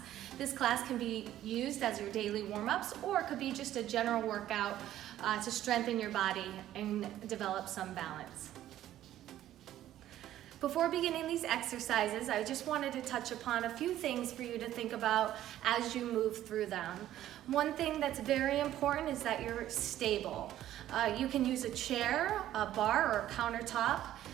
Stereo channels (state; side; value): quieter; left; 12.8 dB